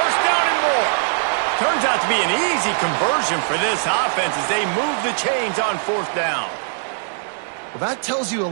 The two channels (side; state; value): left; silent; digital silence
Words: down and more. Turns out to be an easy conversion for this offense as they move the chains on 4th down. Well, that tells you a